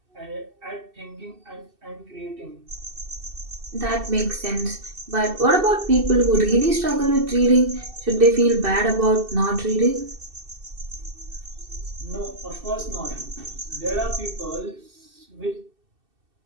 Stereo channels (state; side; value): late; left; 2.7 ms